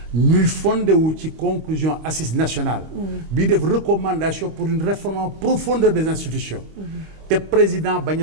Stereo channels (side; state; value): left; late; 25 ms